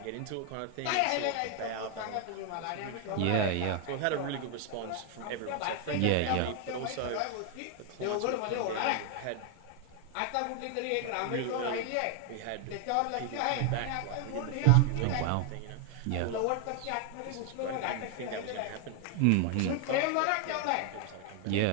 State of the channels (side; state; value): both; different; correlation 0.00